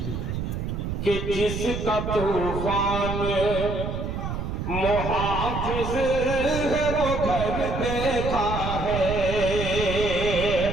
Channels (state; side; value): noise; right; rumble, 4 dB below the sound